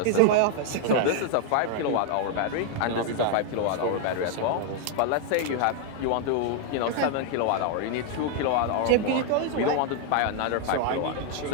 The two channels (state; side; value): different; both; correlation 0.00